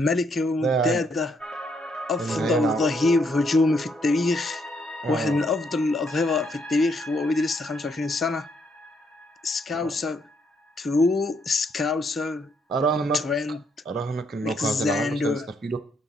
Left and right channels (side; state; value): both; normal; correlation 0.73